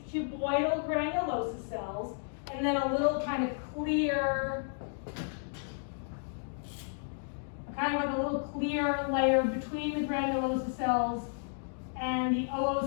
cuboidal granulosa cells and then a little kind of clear, kind of like a little clear layer between the granulosa cells and the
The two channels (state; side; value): silent; right; digital silence